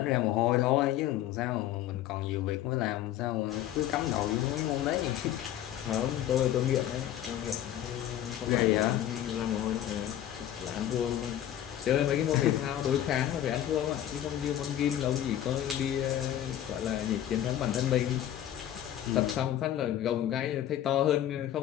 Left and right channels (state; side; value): quieter; right; 11.7 dB